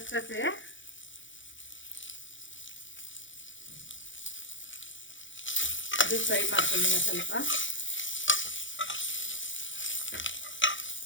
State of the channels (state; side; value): late; right; 0.56 ms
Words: ಇದು ಫ್ರೈ ಮಾಡ್ಕೊಳ್ಳೋಣ ಸ್ವಲ್ಪ.